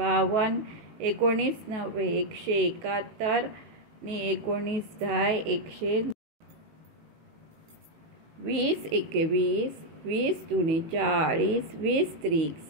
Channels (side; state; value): left; late; 19 ms